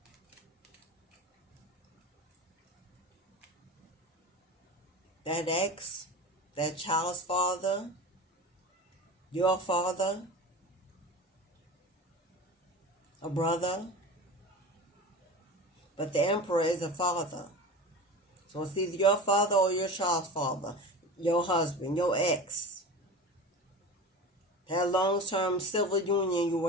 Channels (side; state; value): both; normal; correlation 0.32